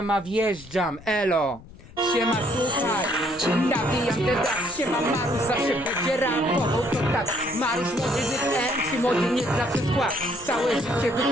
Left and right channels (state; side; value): noise; left; rumble, 20 dB below the sound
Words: wjeżdżam, elo. Siema, słuchaj, nawijam ten rap. Siema, Marusz zawsze będzie rapował, to tak. Marusz młody MC, młody nie zawsze skład. Całe życie